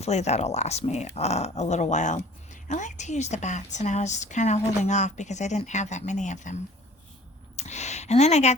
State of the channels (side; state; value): both; normal; correlation 0.50